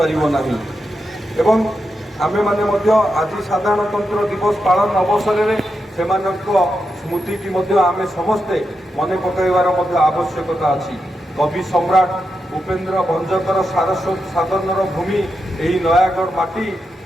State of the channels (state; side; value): normal; both; correlation 0.86